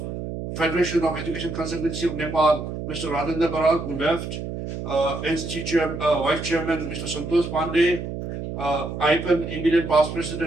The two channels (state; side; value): noise; right; hum, 6 dB below the sound